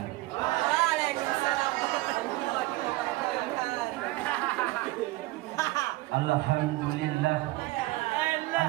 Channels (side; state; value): left; quieter; 19.5 dB